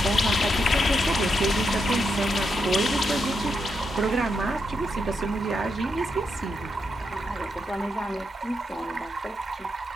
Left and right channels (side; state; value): both; normal; correlation 0.82